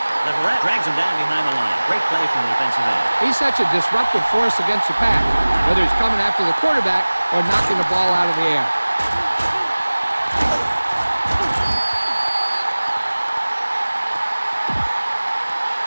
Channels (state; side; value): inverted; both; correlation -1.00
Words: The ref drags him down behind the line. Great play from the defensive end. He's such a disruptive force against the pass, whether he's coming after the quarterback or knocking the ball out of the air.